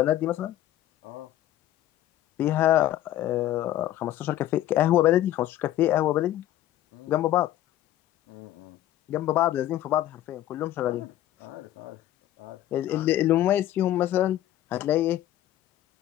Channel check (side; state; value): right; quieter; 13.3 dB